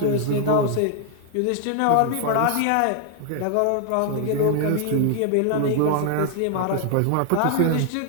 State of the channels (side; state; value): both; different; correlation 0.00